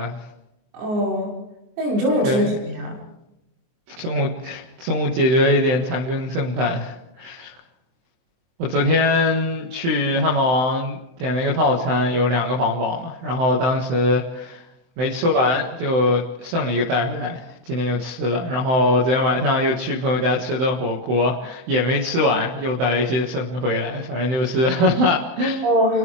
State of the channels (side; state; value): left; late; 24 ms